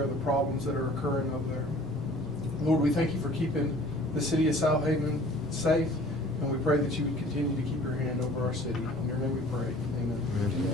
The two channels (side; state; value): both; normal; correlation 0.49